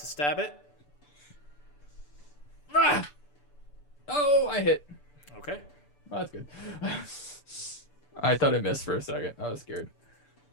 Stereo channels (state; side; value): late; right; 6.9 ms